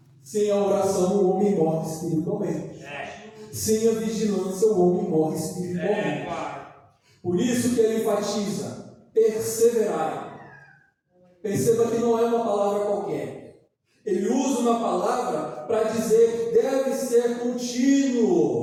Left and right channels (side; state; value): both; identical; correlation 1.00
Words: Sem a oração o homem morre espiritualmente. Sem a vigilância o homem morre espiritualmente. Por isso que ele enfatiza: perseverar. Perceba que não é uma palavra qualquer. Ele usa uma palavra para dizer que deve ser contínuo